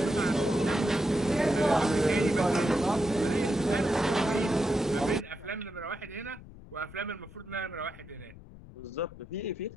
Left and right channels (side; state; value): left; noise; rumble, 18 dB below the sound